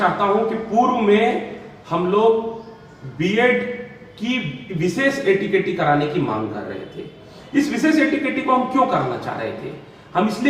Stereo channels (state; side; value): identical; both; correlation 1.00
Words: हूं कि पूर्व में हम लोग बीएड की विशेष एटीकेटी कराने की मांग कर रहे थे। इस विशेष एटीकेटी को हम क्यों कराना चाह रहे थे? हम